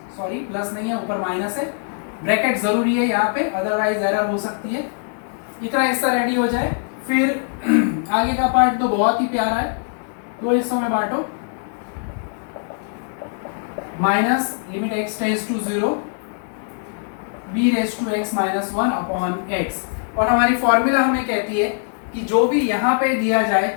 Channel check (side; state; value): right; silent; 65 dB below the other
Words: सॉरी प्लस नहीं है, ऊपर माइनस है, ब्रैकेट जरूरी है यहाँ पे, अदरवाइज एरर हो सकती है। इतना हिस्सा रेडी हो जाए, फिर आगे का पार्ट तो बहुत ही प्यारा है, दो हिस्सों में बांटो, minus limit x tends to 0 b raise to x -1 upon x। और हमारी फॉर्मूला हमें कहती है कि जो भी यहाँ पे दिया जाए